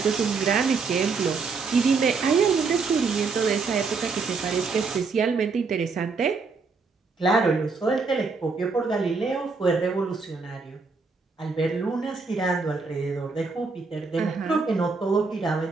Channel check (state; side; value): quieter; left; 4.5 dB